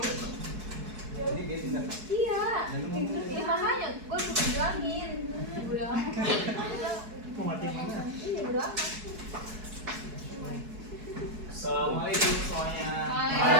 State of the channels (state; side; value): late; left; 4.7 ms